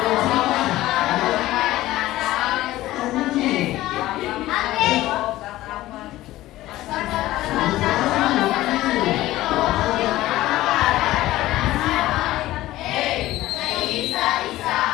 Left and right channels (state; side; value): quieter; right; 16.1 dB